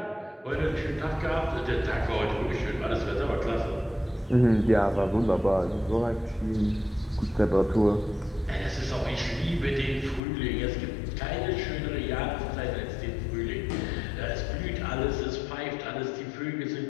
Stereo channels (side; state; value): right; drops out; at 10.2 s